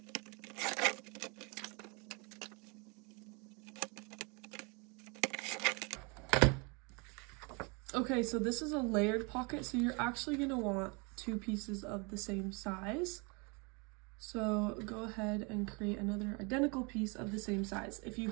Okay, so this is a layered pocket, so you're actually going to want two pieces of the same size. So go ahead and create another identical piece of the same size. If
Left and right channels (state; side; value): quieter; left; 31.0 dB